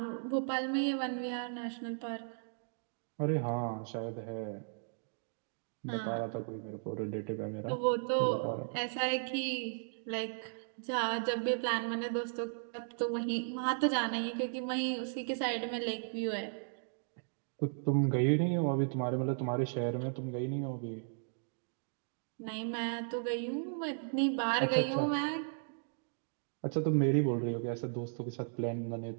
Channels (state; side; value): silent; left; digital silence